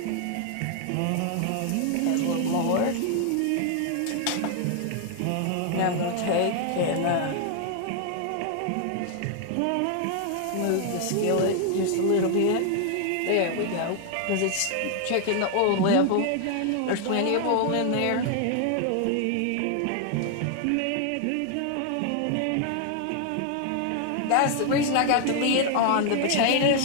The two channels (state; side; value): different; both; correlation 0.00